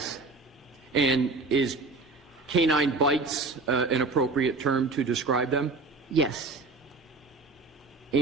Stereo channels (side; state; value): left; quieter; 3.6 dB